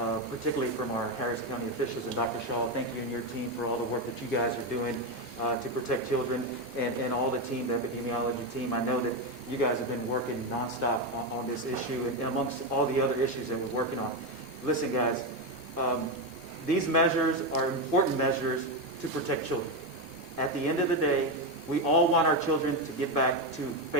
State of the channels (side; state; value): both; normal; correlation 0.10